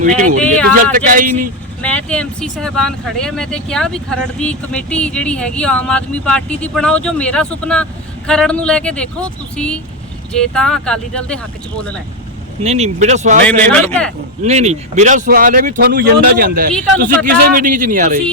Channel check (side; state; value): both; normal; correlation 0.07